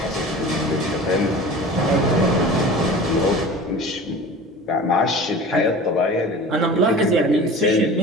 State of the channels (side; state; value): both; normal; correlation 0.38